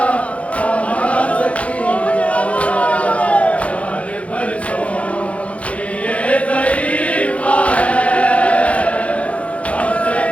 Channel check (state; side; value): late; right; 0.064 ms